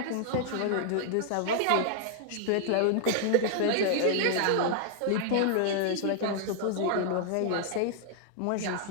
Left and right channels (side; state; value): both; different; correlation -0.01